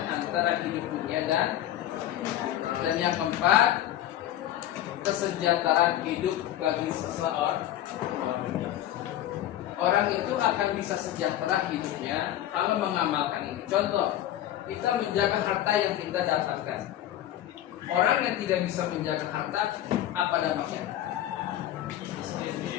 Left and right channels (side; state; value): right; quieter; 12.6 dB